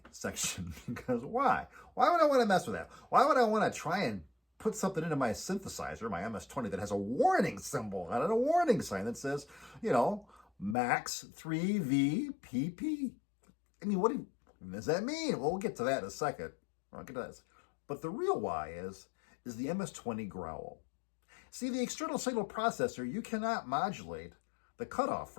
section, because why? Why would I want to mess with that? Why would I want to try and put something into my synthesizer, my MS-20, that has a warning symbol on it, a warning sign that says, Max 3V I mean, what does that mean? Well, we'll get to that in a second. I'll get to that. But the real why is the MS-20 growl. See, the external signal processor, you cannot modulate the cutoff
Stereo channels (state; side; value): drops out; right; at 10.8 s